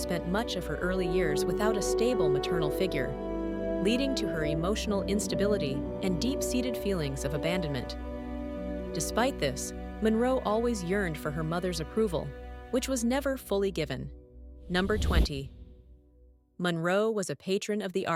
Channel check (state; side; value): identical; both; correlation 1.00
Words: much of her early years without a stable maternal figure, leading to her emotional instability and deep-seated feelings of abandonment. Despite this, Monroe always yearned for her mother's approval, which was never fully given. Number 20. Monroe was a patron of the